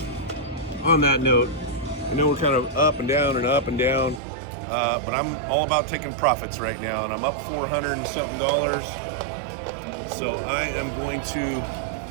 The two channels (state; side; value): drops out; left; at 4.2 s